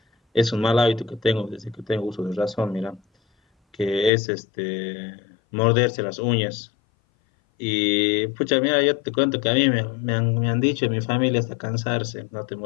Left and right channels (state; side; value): drops out; right; at 4.1 s